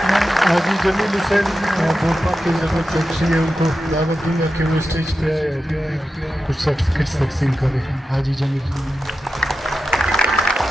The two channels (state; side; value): normal; both; correlation 0.91